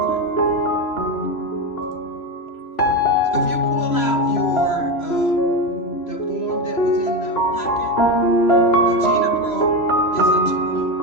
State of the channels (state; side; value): late; right; 3.0 ms